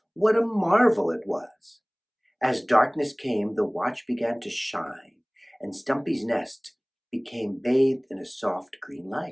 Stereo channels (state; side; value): identical; both; correlation 1.00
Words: what a marvel it was. As darkness came, the watch began to shine, and Stumpy's nest became bathed in a soft green